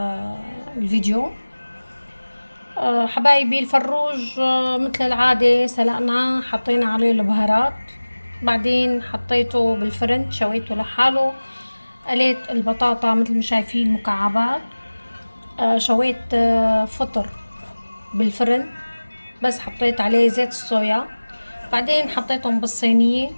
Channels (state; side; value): inverted; both; correlation -1.00